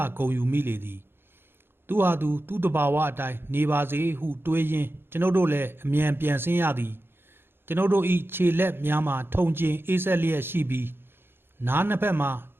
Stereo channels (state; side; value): late; left; 0.11 ms